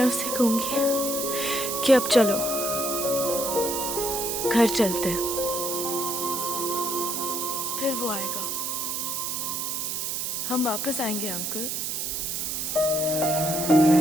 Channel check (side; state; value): right; noise; hiss, 2 dB below the sound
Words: उसे कहूंगी कि अब चलो, घर चलते हैं। फिर वो आएगा, हम वापस आएंगे अंकल।